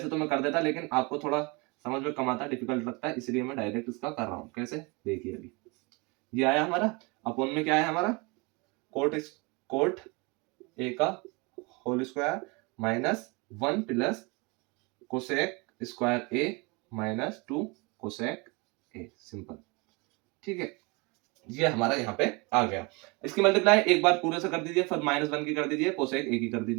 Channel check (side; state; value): left; quieter; 28.1 dB